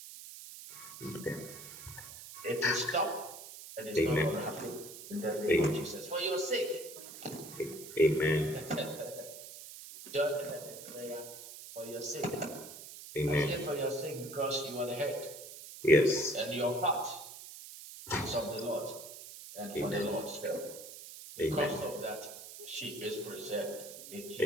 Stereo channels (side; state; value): right; noise; hiss, 13 dB below the sound